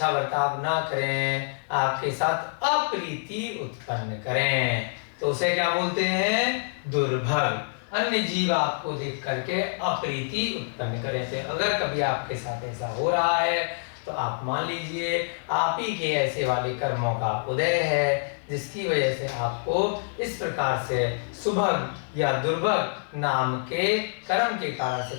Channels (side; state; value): right; silent; digital silence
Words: बर्ताव ना करें, आपके साथ अप्रीति उत्पन्न करें, तो उसे क्या बोलते हैं? दुर्भग। अन्य जीव आपको देख करके अप्रीति उत्पन्न करें। तो अगर कभी आपके साथ ऐसा हो रहा है तो आप मान लीजिए आप ही के ऐसे वाले कर्मों का उदय है, जिसकी वजह से आपको इस प्रकार से सुभग या दुर्भग नाम के कर्म के कारण से